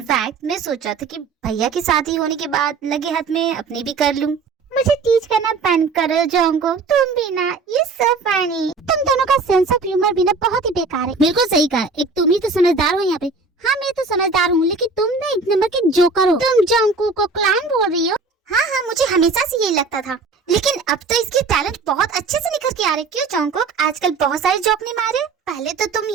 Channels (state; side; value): quieter; left; 4.2 dB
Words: मैं सोचा था कि भैया की शादी होने के बाद लगे हाथ में अपनी भी कर लूँ। मुझे टीच करना बंद करो जोंको, तुम भी ना, ये सब फनी। तुम दोनों का सेंस ऑफ ह्यूमर भी ना बहुत ही बेकार है। बिल्कुल सही कहा, एक तुम ही तो समझदार हो यहाँ पे। हाँ मैं तो समझदार हूँ, लेकिन तुम ना एक नंबर के जोकर हो। तुम जोंको को क्लान बोल रही हो? हाँ मुझे हमेशा से यही लगता था, लेकिन अब तो इसके टैलेंट बहुत अच्छे से निखर के आ रहे। क्यों जॉन्गकुक, आजकल बहुत सारे जॉब नहीं मारे, पहले तो तुम